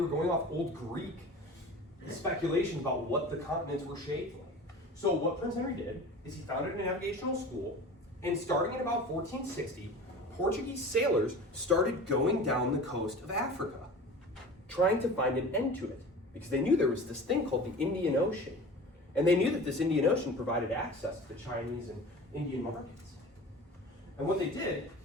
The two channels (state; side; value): normal; both; correlation 0.38